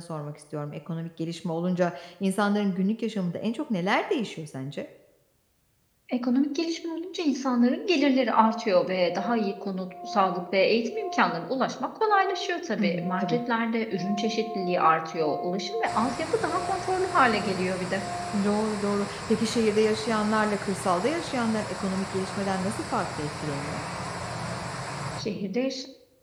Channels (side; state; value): both; identical; correlation 1.00